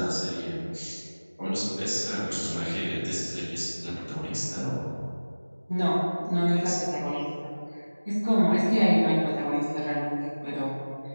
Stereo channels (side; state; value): both; inverted; correlation -1.00